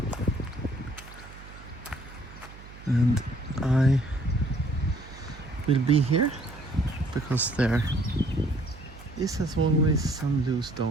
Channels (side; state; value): right; noise; hum, 18 dB below the sound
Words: and I will be here because there is, as always, some loose